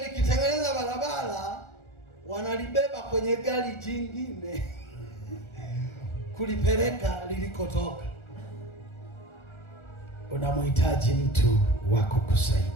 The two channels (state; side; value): late; right; 1.4 ms